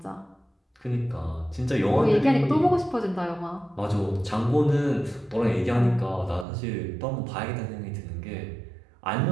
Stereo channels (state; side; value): drops out; left; at 6.5 s